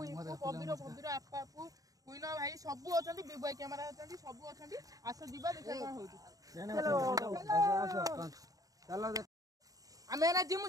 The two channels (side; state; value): left; late; 0.17 ms